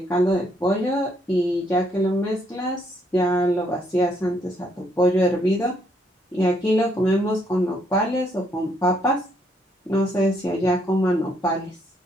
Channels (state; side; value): normal; both; correlation 0.71